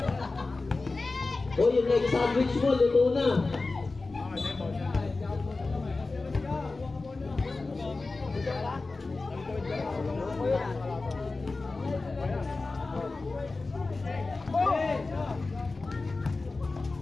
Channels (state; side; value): quieter; right; 3.6 dB